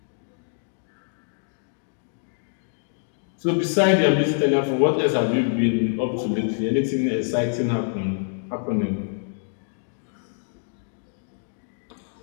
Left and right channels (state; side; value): silent; right; 61 dB below the other